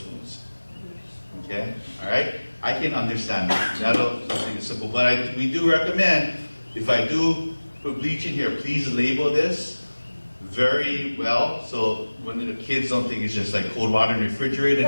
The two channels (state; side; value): inverted; both; correlation -1.00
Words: Okay, all right? I can understand that. That'll something simple. But we do recommend, if I do put bleach in here, please label this very well, so when the kids don't think it's just like cold water in the refrigerator